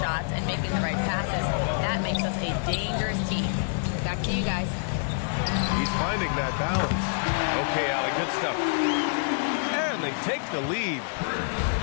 and making the right passes, that makes us a dangerous team." Back to you guys. He's finding that balance. Okay, Allie, good stuff. And they take the lead.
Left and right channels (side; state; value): right; silent; digital silence